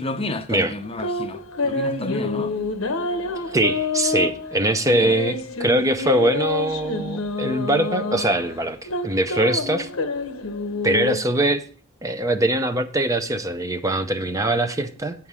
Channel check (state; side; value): normal; both; correlation 0.31